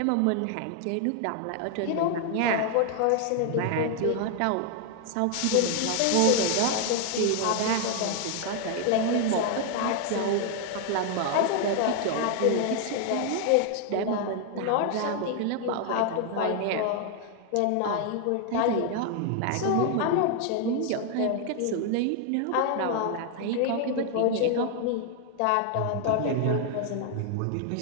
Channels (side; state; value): both; different; correlation 0.00